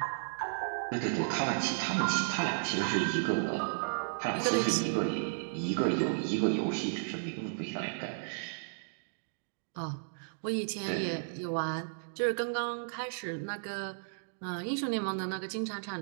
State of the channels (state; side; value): silent; left; digital silence